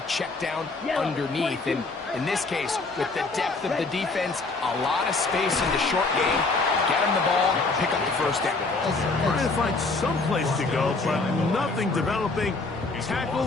check down underneath. And in this case, with the depth of the defense, a lot of space in the short game, get them the ball, pick up the 1st down. Trying to find some place to go, but nothing developing.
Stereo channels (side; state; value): right; quieter; 3.6 dB